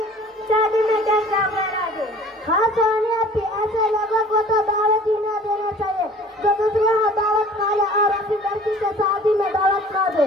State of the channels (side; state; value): both; normal; correlation 0.48